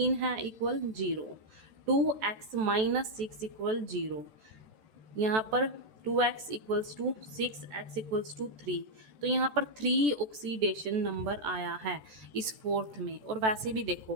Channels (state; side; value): late; left; 14 ms